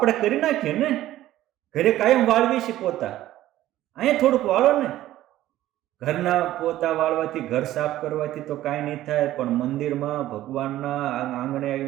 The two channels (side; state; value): left; quieter; 14.3 dB